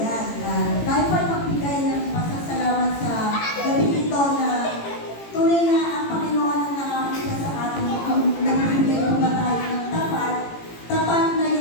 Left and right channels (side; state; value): right; late; 18 ms